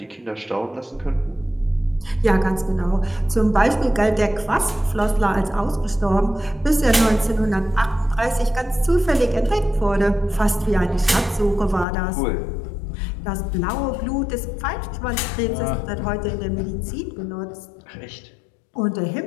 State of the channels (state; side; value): drops out; right; at 11.9 s